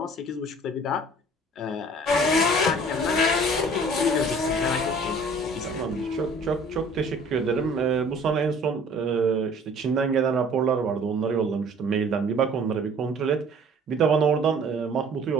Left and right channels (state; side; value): normal; both; correlation 0.51